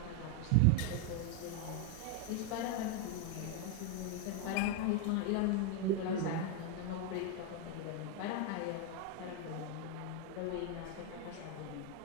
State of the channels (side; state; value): both; different; correlation 0.02